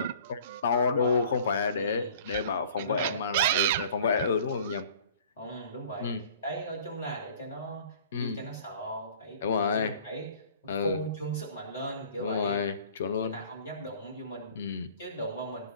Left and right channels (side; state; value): both; inverted; correlation -0.49